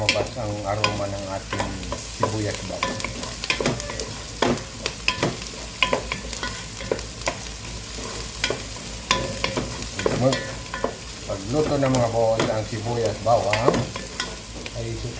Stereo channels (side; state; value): both; identical; correlation 1.00